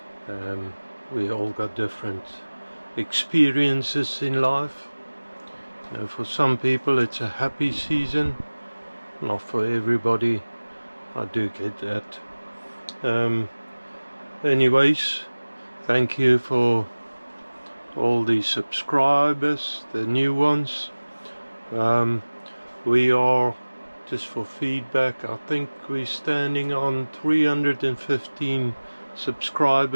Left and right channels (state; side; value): inverted; both; correlation -1.00